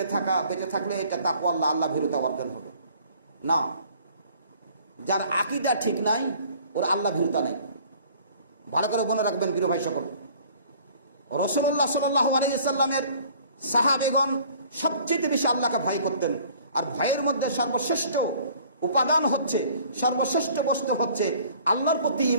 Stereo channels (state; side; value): inverted; both; correlation -0.54